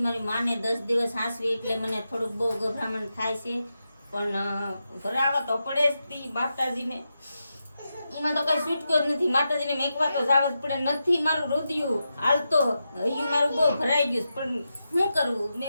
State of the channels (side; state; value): both; inverted; correlation -0.88